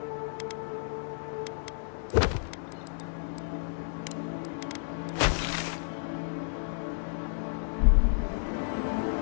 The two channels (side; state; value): right; silent; digital silence